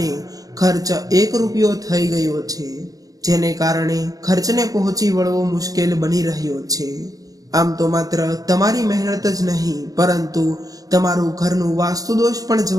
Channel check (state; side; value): late; left; 0.17 ms